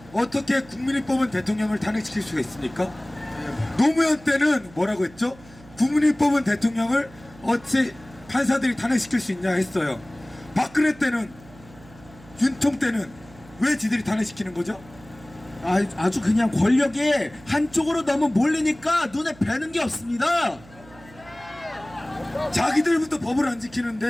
어떻게 국민이 뽑은 대통령을 탄핵시킬 수가 있습니까? 노무현 때는 뭐라고 했죠? 국민이 뽑은 대통령을 어찌 판사들이 탄핵시킬 수 있냐 했어요. 박근혜 때는, 윤통 때는 왜 지들이 탄핵시키는 거죠? 아주 그냥 권력이 한쪽으로 너무 몰리니까 눈에 뵈는 게 없습니다. 자기들부터 법을 안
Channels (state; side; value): noise; right; hum, 22 dB below the sound